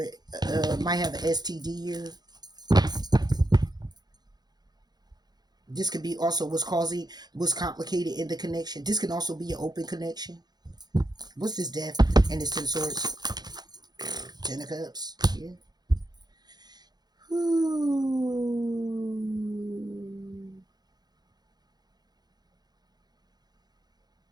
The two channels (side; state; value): left; late; 0.20 ms